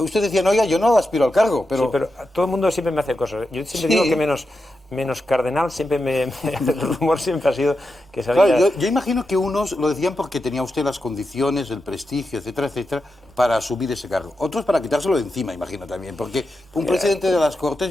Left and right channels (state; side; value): normal; both; correlation 0.89